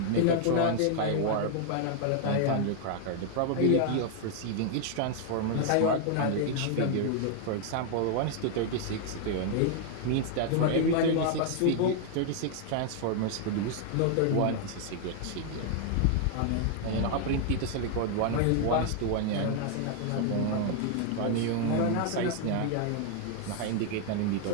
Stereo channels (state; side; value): different; both; correlation 0.00